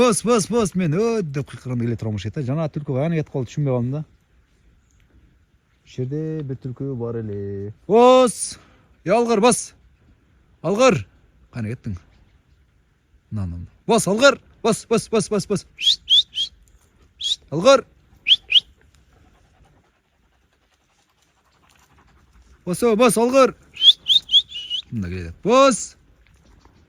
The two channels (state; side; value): identical; both; correlation 1.00